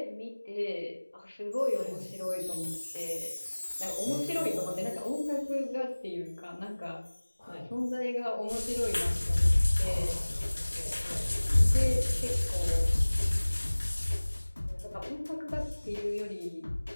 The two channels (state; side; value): inverted; both; correlation -1.00